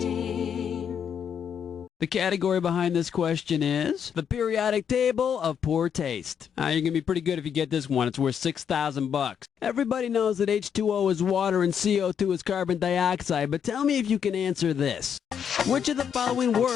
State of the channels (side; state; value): right; quieter; 7.9 dB